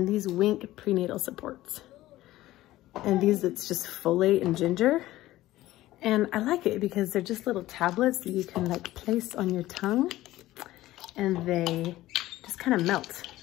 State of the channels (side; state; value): right; quieter; 16.0 dB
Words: these Wink prenatal supports. And these, it's just folate and ginger. And I like it because they're just little tablets that you can like place on your tongue, and they just kind of melt.